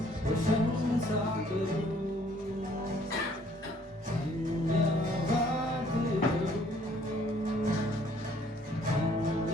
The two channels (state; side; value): normal; both; correlation 0.61